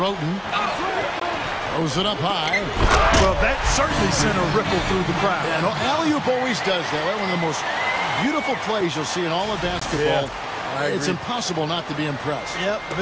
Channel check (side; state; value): both; identical; correlation 1.00